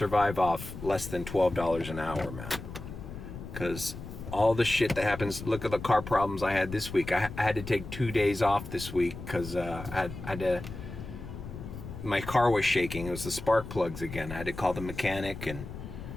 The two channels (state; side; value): noise; left; rumble, 10 dB below the sound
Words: off less than $12 an hour, man. Because all the shit that happens, look at the car problems I had this week. I had to take 2 days off this week because I had to, my car was shaking. It was the spark plugs again. I had to call the mechanic, and